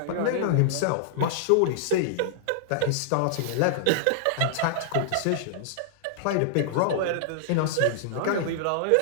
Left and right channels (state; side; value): different; both; correlation -0.01